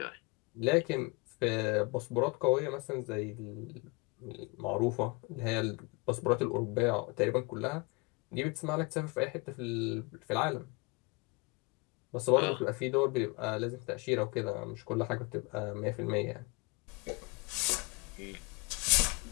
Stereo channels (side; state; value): right; quieter; 28.1 dB